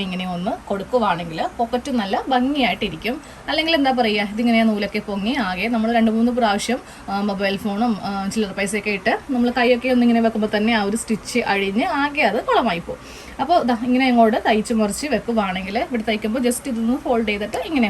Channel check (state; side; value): identical; both; correlation 1.00